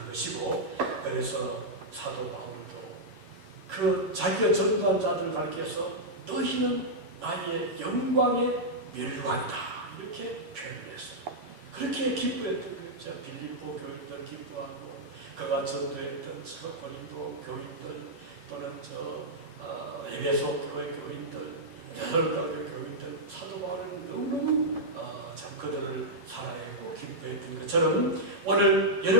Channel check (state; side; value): late; left; 10 ms